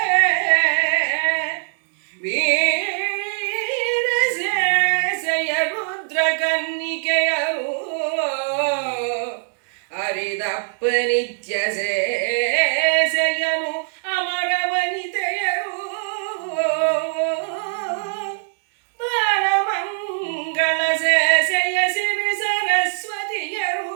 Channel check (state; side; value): silent; left; digital silence